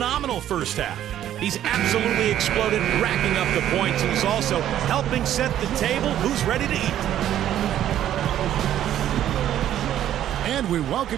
first half. He's absolutely exploded, racking up the points. He's also helping set the table. Who's ready to eat? And we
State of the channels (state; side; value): quieter; left; 11.5 dB